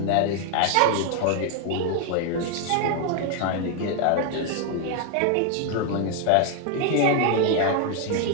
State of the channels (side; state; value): both; different; correlation 0.01